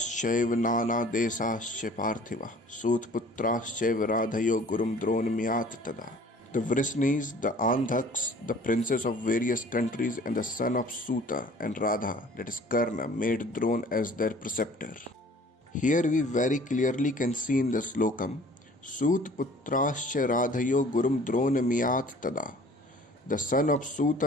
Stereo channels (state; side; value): normal; both; correlation 0.50